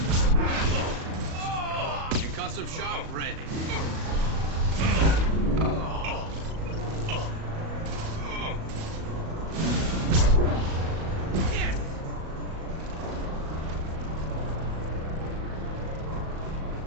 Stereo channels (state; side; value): late; left; 37 ms